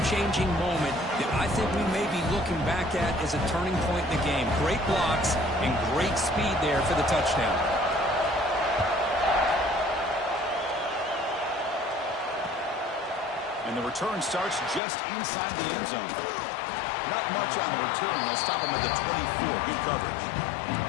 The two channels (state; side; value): drops out; right; at 14.8 s